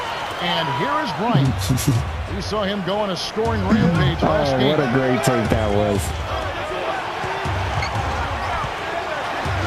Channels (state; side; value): identical; both; correlation 1.00